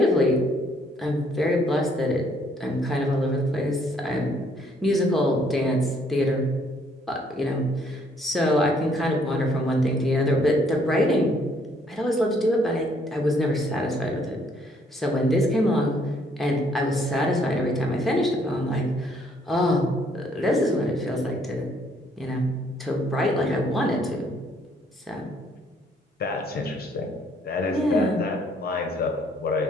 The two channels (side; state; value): both; normal; correlation 0.66